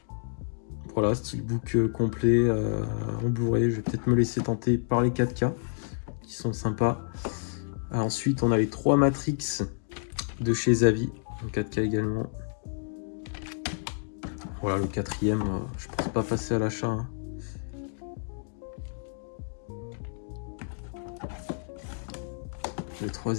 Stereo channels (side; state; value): right; silent; digital silence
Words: Voilà, steelbook complet en Blu-ray. Je vais peut-être me laisser tenter par les 4K qui sont sympas. Ensuite, on a les 3 Matrix de chez Zavi en 4K également. Voilà, le quatrième, je pense pas passer à l'achat. Hein. Le